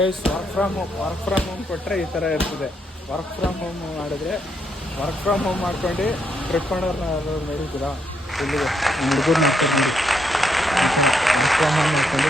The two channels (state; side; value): normal; both; correlation 0.77